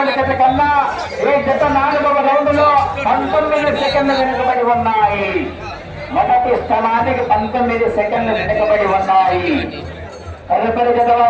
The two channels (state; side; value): identical; both; correlation 1.00